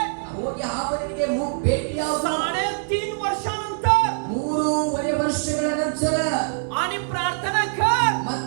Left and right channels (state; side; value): silent; left; 63 dB below the other